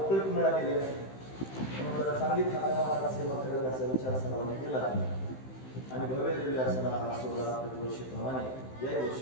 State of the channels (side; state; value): right; late; 15 ms